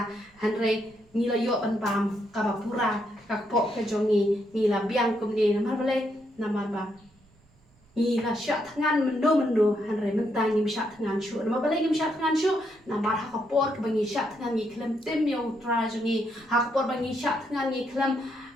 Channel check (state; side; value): normal; both; correlation 0.77